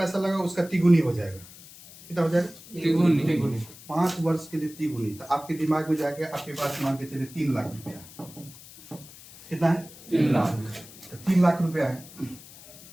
लगाओ उसका तिगुनी हो जाएगा। कितना हो जाएगा? तिगुनी। 5 वर्ष के लिए तिगुनी। तो आपके दिमाग में जाके आपके पास मान के चलिए 3 लाख रुपया। कितना है? 3 लाख। तो 3 लाख रुपया है,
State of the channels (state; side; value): noise; left; hiss, 19 dB below the sound